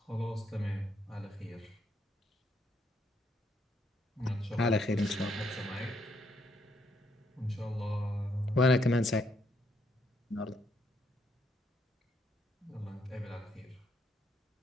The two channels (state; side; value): normal; both; correlation 0.74